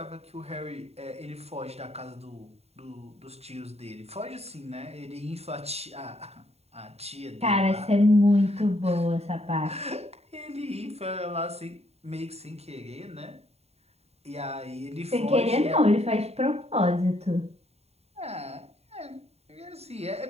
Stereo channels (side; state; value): left; late; 0.30 ms